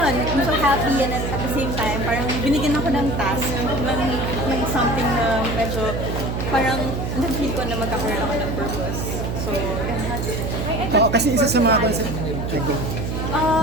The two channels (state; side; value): noise; right; hum, 3 dB below the sound